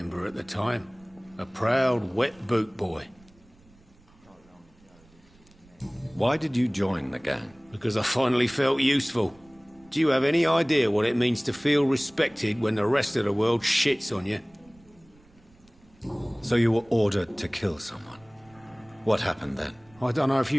at the time. A proud, wet boot boy. Why did you join the gang? Because I finally felt useful. Do you have any idea what it means to feel respected when the rest of the world shits on you? So you were ordered to kill someone. What happened then? I don't know if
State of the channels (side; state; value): right; noise; rumble, 29 dB below the sound